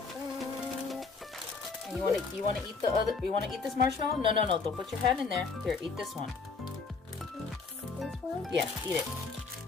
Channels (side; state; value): right; quieter; 4.6 dB